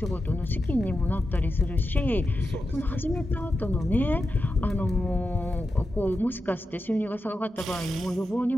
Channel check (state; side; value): normal; both; correlation 0.90